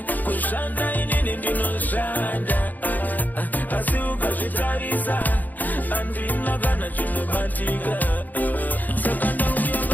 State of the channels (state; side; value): late; right; 0.083 ms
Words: kushanda inini ndinoshanda. Asi ukazvitarisa, handina kana chinobatika. Saka